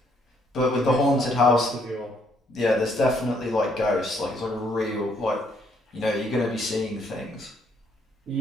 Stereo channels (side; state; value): both; normal; correlation 0.69